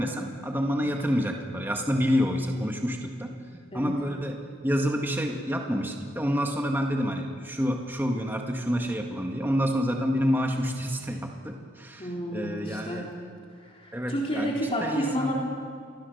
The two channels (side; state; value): both; normal; correlation 0.81